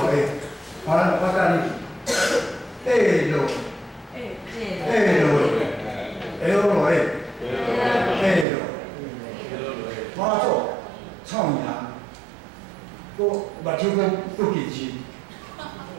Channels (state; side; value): drops out; left; at 8.5 s